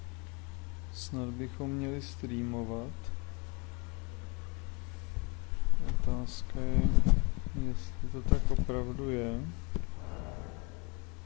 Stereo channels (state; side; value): quieter; right; 27.7 dB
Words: Snad bychom měli streamovat. Otázka je, jestli to tak opravdu je.